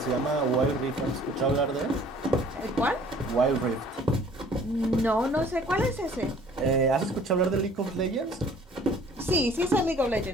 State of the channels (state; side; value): normal; both; correlation 0.53